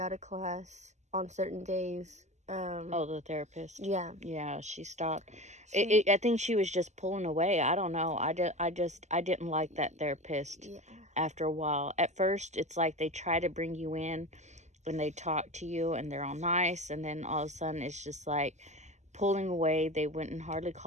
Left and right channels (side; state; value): left; late; 0.33 ms